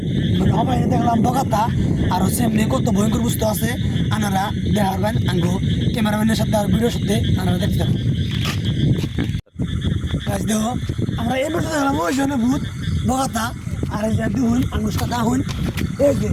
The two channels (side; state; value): both; identical; correlation 1.00